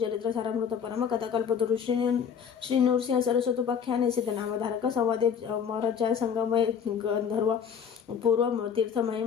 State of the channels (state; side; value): quieter; right; 7.3 dB